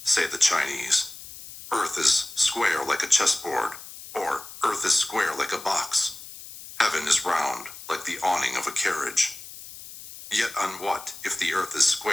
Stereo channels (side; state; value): left; noise; hiss, 14 dB below the sound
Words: say the Chinese. Earth is square like a chessboard, or earth is square like a box. Heaven is round like the awning of a carriage. Yet on what, if the earth is